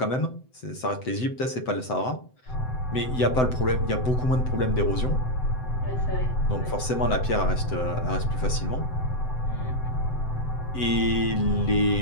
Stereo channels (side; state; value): right; late; 7.8 ms